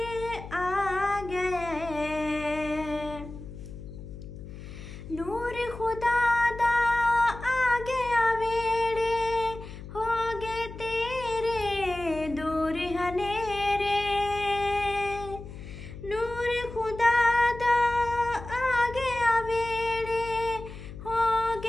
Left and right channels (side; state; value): left; noise; hum, 13 dB below the sound